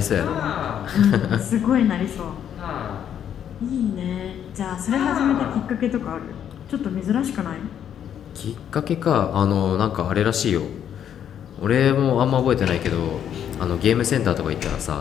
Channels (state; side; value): quieter; right; 9.4 dB